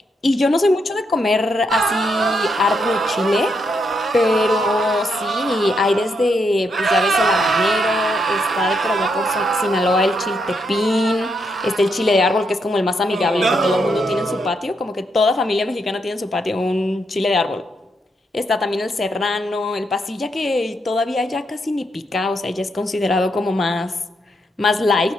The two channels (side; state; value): both; normal; correlation 0.79